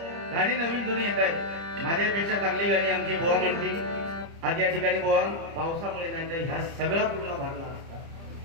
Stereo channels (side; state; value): left; late; 30 ms